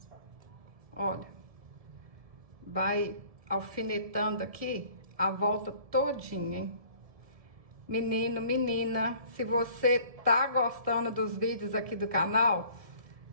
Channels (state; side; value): late; left; 1.7 ms